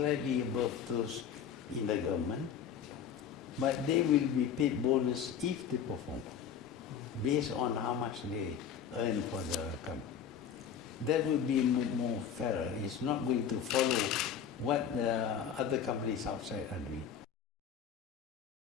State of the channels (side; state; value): right; quieter; 8.0 dB